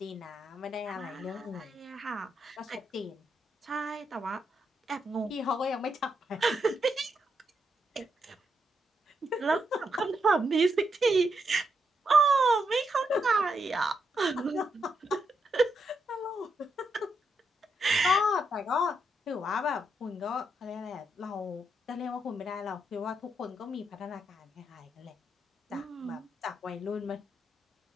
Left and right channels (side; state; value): both; normal; correlation 0.81